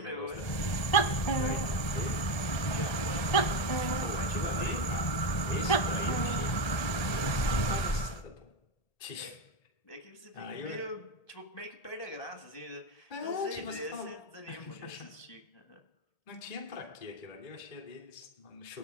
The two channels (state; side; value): late; right; 1.7 ms